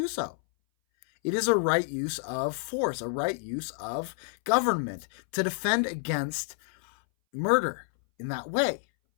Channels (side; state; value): right; silent; 59 dB below the other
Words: so. It is a right use of force, a right use of government to defend against murder in that way.